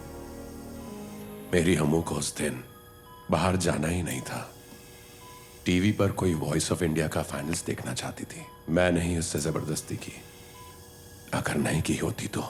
मेरी हमू को उस दिन बाहर जाना ही नहीं था। टीवी पर कोई वॉइस ऑफ इंडिया का फाइनल्स देखना चाहती थी। मैं नहीं उससे जबरदस्ती की। अगर नहीं की होती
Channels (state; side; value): identical; both; correlation 1.00